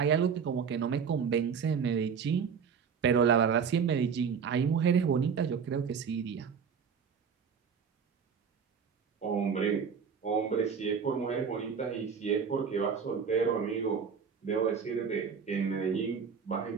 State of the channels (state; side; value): quieter; left; 6.6 dB